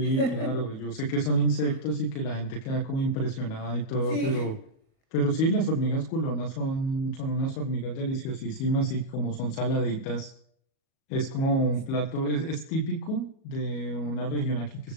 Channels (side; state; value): right; late; 37 ms